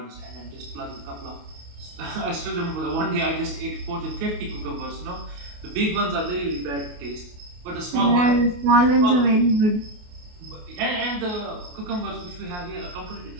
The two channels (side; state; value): left; late; 28 ms